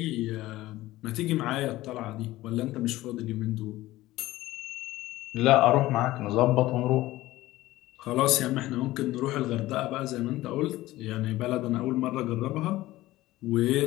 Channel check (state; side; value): quieter; right; 17.0 dB